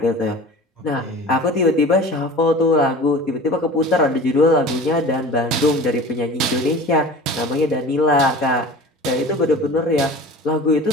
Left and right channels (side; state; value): both; normal; correlation 0.39